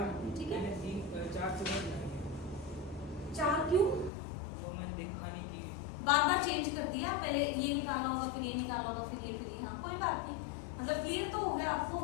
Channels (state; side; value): drops out; right; at 4.1 s